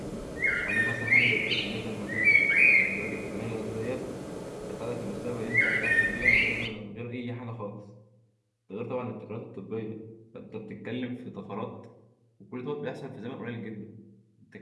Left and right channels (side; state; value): both; identical; correlation 1.00